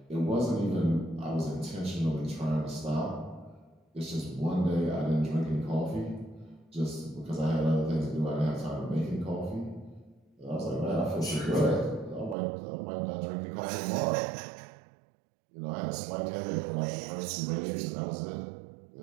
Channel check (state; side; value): drops out; left; at 12.4 s